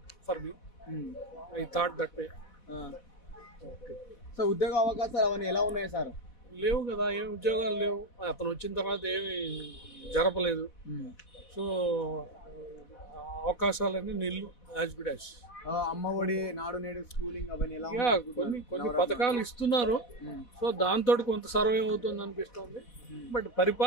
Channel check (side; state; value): right; late; 4.1 ms